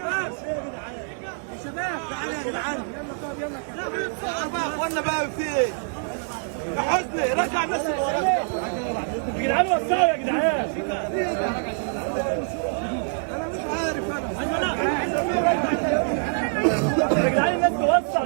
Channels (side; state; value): left; silent; 62 dB below the other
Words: شباب تعالوا يا جدعان، يلا طب يلا بقى يا اخوانا بقى في ايه؟ يا حسني رجع الناس اللي وراك يا جدعان، وسعوا يا جدعان. انا مش عارف يا جدعان الناس توسع.